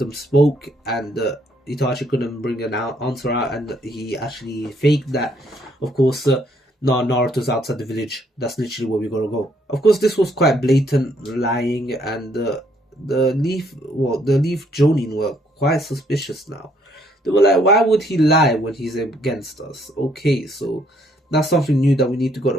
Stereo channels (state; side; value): normal; both; correlation 0.68